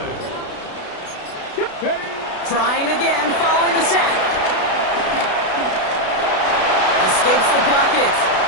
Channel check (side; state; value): right; late; 32 ms